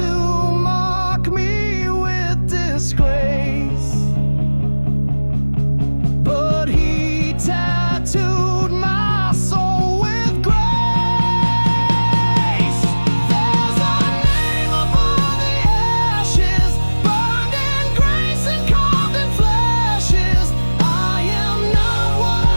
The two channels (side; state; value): both; inverted; correlation -1.00